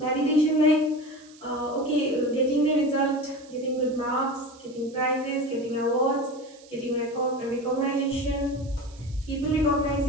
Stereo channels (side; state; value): right; noise; hiss, 25 dB below the sound